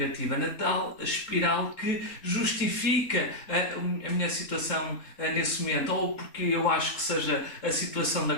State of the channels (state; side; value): late; right; 3.7 ms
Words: na tal espiral que justifica a minha situação nesse momento, ou porque eu acho que seja a situação da